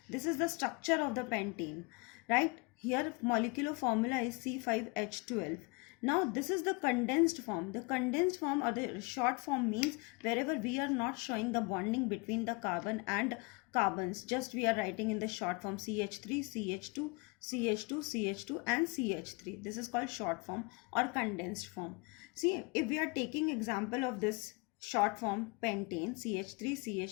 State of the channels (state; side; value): quieter; right; 28.3 dB